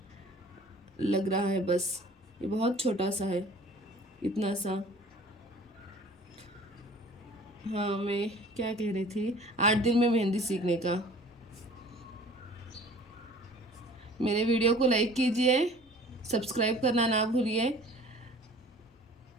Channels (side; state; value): both; normal; correlation 0.48